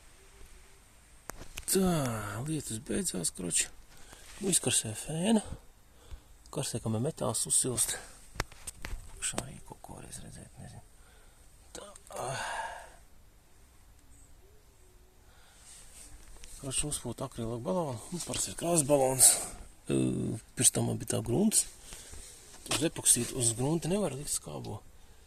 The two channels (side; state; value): both; identical; correlation 1.00